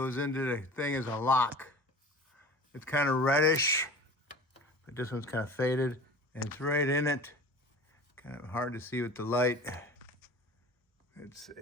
into the thing as a lock. It's kind of reddish, but this one's kind of faded, and it's right in it. Kind of hard to see with the light. Let's see.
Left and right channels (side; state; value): both; normal; correlation 0.39